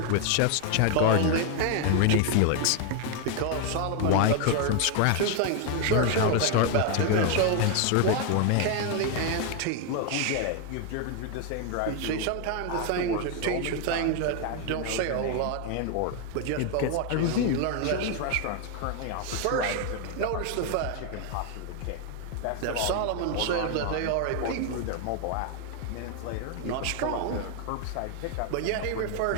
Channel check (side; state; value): both; different; correlation 0.00